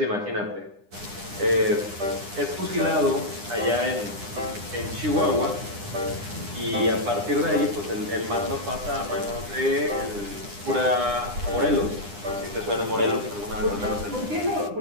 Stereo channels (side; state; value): left; late; 9.9 ms